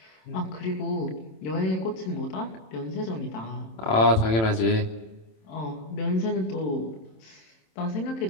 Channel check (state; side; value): late; right; 27 ms